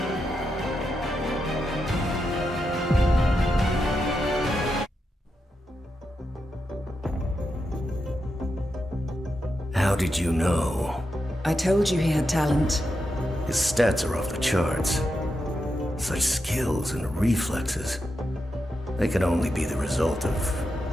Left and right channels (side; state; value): both; normal; correlation 0.86